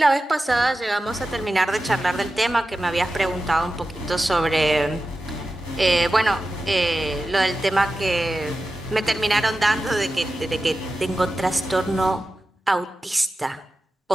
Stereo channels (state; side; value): normal; both; correlation 0.93